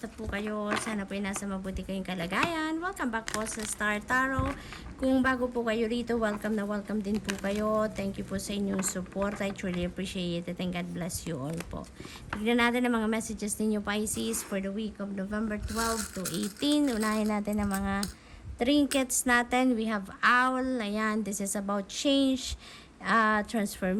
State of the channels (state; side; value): identical; both; correlation 1.00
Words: po kayo? Sana po ay nasa mabuti kayong kalagayan. Welcome back po sa Star Tarot. Kung bago po kayo rito, welcome na welcome din po kayo. Thank you po sa inyong support. I truly appreciate it and God bless you all po. Tignan natin ang mga messages ninyo Pisces for the week of November 12 to 18. Unahin natin ang mga trinkets natin. We have Owl. Ayan, this is about change,